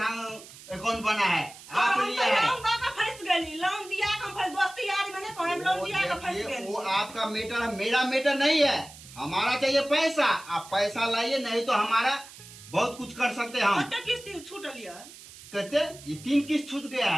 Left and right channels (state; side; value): noise; right; hiss, 18 dB below the sound